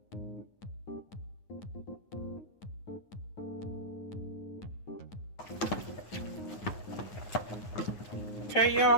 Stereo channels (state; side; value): late; right; 9.1 ms